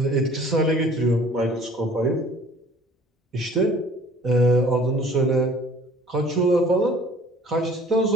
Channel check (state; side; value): normal; both; correlation 0.51